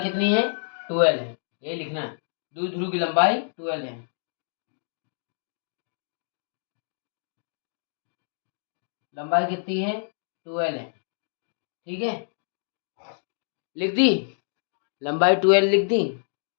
कितनी है, 12 है, ये लिखना है। द्विध्रुव की लंबाई 12 है। लंबाई कितनी है, 12 है। ठीक है, लिख दी, लंबाई 12 लिख दी।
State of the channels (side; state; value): right; silent; digital silence